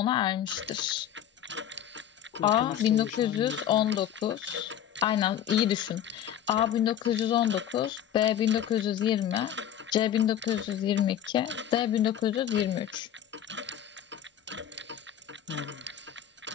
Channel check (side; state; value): right; quieter; 10.3 dB